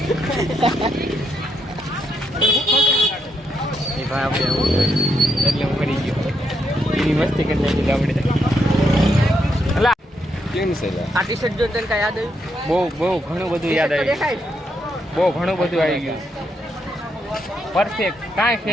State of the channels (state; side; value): normal; both; correlation 0.79